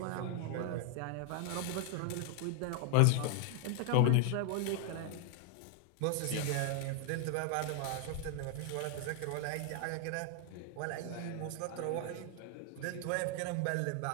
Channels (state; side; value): different; both; correlation 0.00